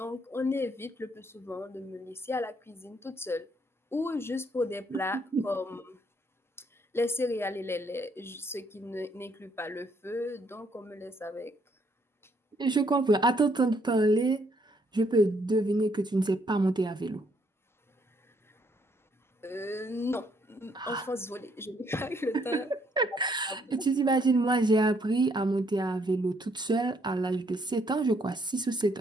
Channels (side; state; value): both; normal; correlation 0.69